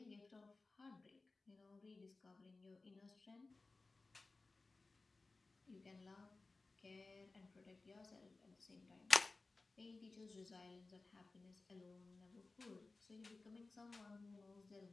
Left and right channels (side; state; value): right; quieter; 3.6 dB